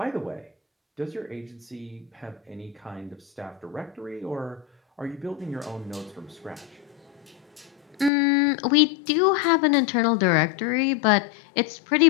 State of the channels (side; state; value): right; drops out; at 8.1 s